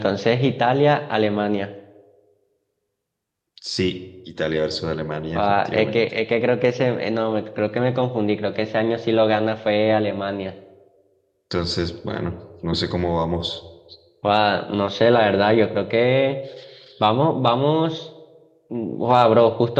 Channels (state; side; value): identical; both; correlation 1.00